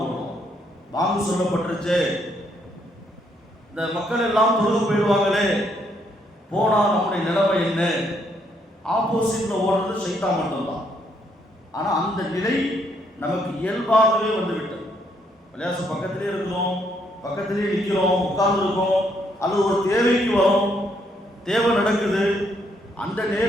ஓடுவோம். பாங்கு சொல்லப்பட்டுருச்சு, இந்த மக்கள் எல்லாம் தொழுது போயிடுவாங்களே, போனா நம்முடைய நிலைமை என்ன? ஆப்போசிட்ல ஓடுறது ஷைத்தான் மட்டும்தான். ஆனா அந்த நிலை நமக்கு இயல்பாகவே வந்துவிட்டது. பள்ளிவாச பக்கத்திலே இருக்கிறோம், பக்கத்திலே நிற்கிறோம், உட்கார்ந்து இருக்கோம், அல்லது ஒரு தேவைக்கு வரும், தேவை நடக்குது, அந்த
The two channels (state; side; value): normal; both; correlation 0.72